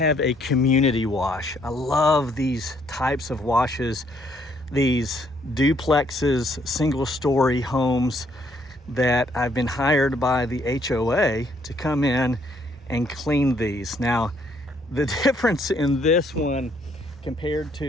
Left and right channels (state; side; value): normal; both; correlation 0.68